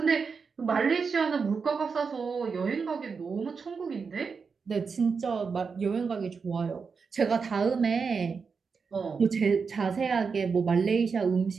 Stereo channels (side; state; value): left; quieter; 5.4 dB